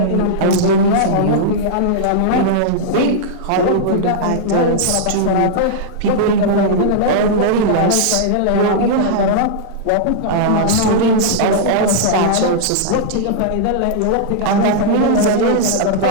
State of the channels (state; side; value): different; both; correlation -0.02